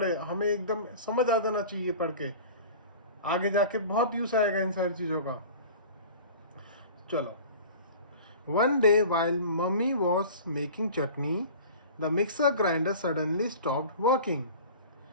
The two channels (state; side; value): inverted; both; correlation -0.40